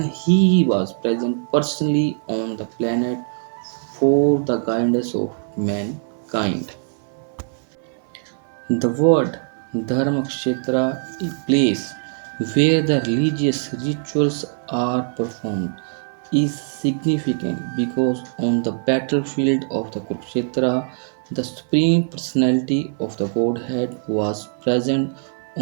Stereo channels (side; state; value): left; silent; 60 dB below the other